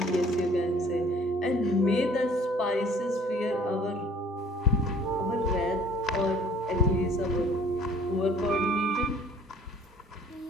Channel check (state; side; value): normal; both; correlation 0.54